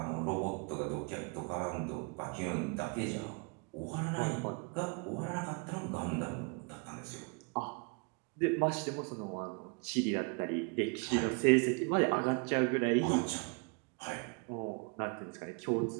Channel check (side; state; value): left; quieter; 34.0 dB